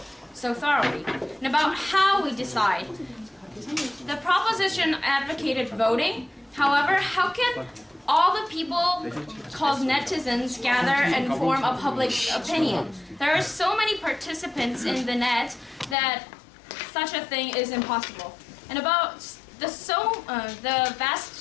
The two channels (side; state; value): right; drops out; at 16.0 s